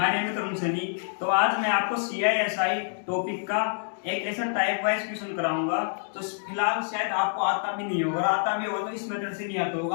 name is Tarun Sunny. तो आज मैं आपको CISI टॉपिक का एक ऐसा टाइप वाइज क्वेश्चन कराऊंगा। तो फिलहाल शायद आपको आता भी नहीं होगा, आता भी होगा तो इस मेथड से नहीं आता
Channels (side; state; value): right; silent; digital silence